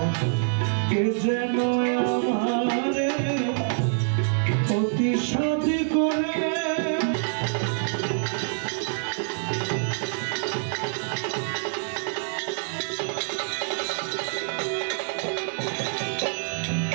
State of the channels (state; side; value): silent; left; digital silence